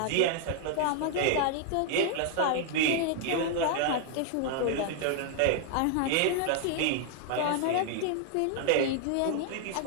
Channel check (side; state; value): both; different; correlation 0.00